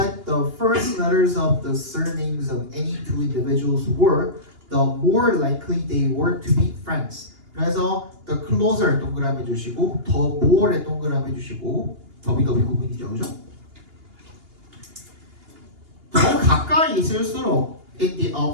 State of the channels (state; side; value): late; left; 2.8 ms